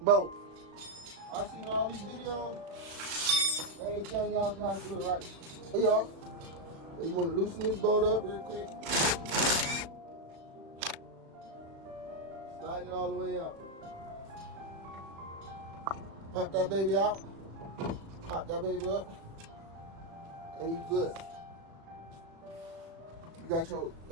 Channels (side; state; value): left; late; 36 ms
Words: bolt. I seen all these videos. They ain't telling y'all how to do it right. Hey y'all. You want to loosen this bolt up real quick. Slide it all the way out. Pop that baby out. Pop that baby up. And you good. You got your